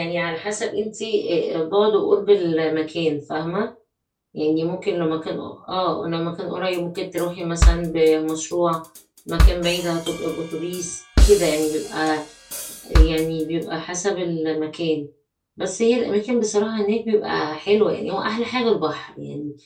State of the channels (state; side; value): identical; both; correlation 1.00